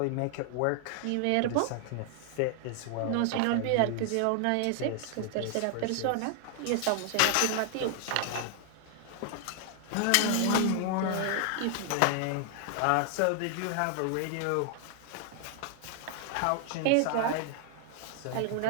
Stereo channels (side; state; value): both; different; correlation 0.00